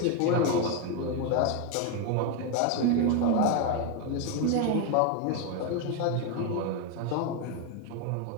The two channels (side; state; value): both; different; correlation 0.01